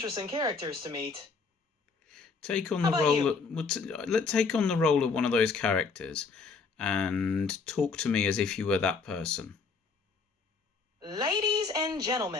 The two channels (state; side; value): quieter; right; 4.8 dB